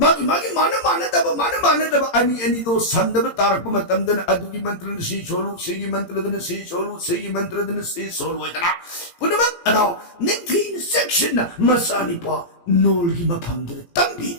mana daba ani do samnaba tarak matamdan adugi mantra si solo sigi mantra dan si solo itana punama adaw nintin section na masani pa nolgi mapamdra tambi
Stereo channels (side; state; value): right; late; 17 ms